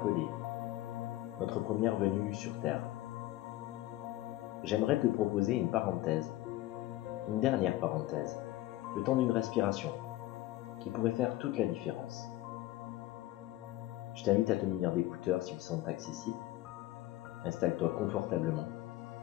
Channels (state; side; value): quieter; right; 16.5 dB